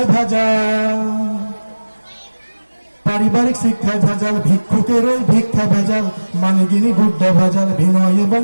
ভেজাল, পারিবারিক শিক্ষায় ভেজাল। ভিক্ষুকের ওই ভিক্ষা ভেজাল, মানিগিনি বুদ্ধ ভেজাল। বিনয় এবং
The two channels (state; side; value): inverted; both; correlation -1.00